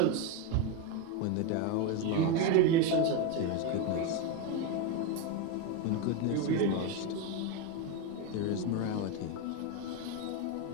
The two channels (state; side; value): different; both; correlation 0.03